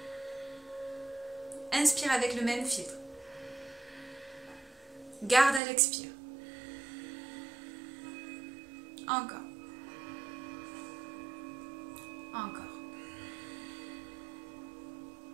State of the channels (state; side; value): drops out; left; at 5.6 s